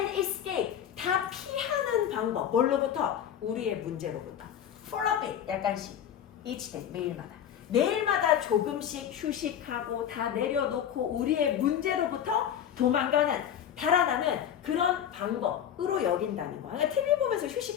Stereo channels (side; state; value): right; quieter; 9.5 dB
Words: escape. 다 피하는 방법. 뭘로부터? 우리의 문제로부터. for a bit. 약간씩. each day. 매일마다. 매일마다 조금씩 휴식하고 다 내려놓고 우리의 문제로부터 도망가는, 달아나는 그런 방법으로 여긴다는 거야. 그러니까 TV 보면서